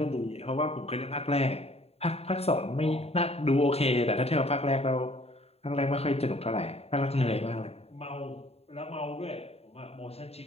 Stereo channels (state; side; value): late; right; 0.29 ms